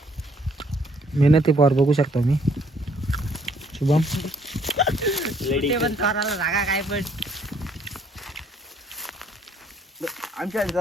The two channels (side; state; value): both; normal; correlation 0.64